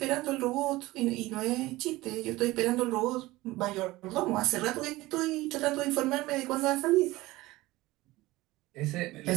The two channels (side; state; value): left; quieter; 19.0 dB